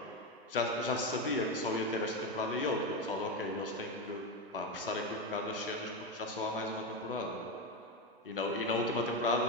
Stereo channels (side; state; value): both; normal; correlation 0.13